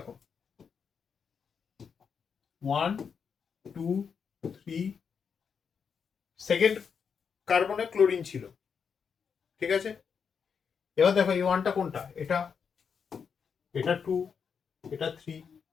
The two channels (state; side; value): quieter; right; 6.4 dB